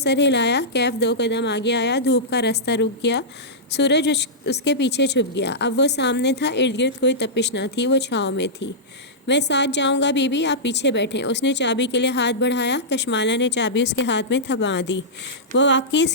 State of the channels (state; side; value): normal; both; correlation -0.13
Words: ہلایا۔ کیف 2 قدم آگے آیا۔ دھوپ کا راستہ رک گیا۔ سورج اس کے پیچھے چھپ گیا۔ اب وہ سامنے تھا، ارد گرد کوئی تپش نہ تھی، وہ چھاؤں میں تھی۔ میں ساتھ جاؤں گا بی بی، آپ پیچھے بیٹھیں۔ اس نے چابی کے لیے ہاتھ بڑھایا۔ کشمالہ نے چابی اس کے ہاتھ میں تھما دی۔ وہ واقعی